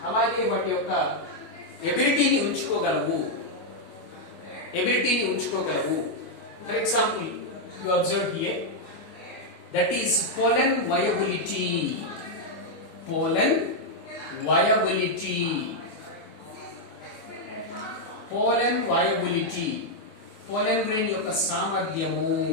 అలాగే వాటి యొక్క ఎబిలిటీని ఉంచుకోగలవు. For example, you observe here, that is pollen viability. Pollen pollen grain యొక్క సామర్థ్యము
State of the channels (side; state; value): right; late; 25 ms